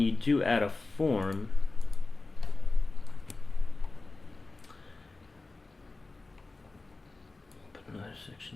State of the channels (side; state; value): right; quieter; 3.4 dB